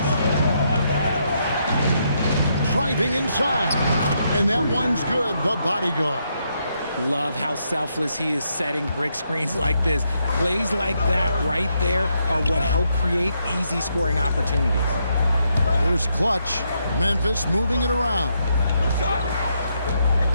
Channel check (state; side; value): inverted; both; correlation -0.78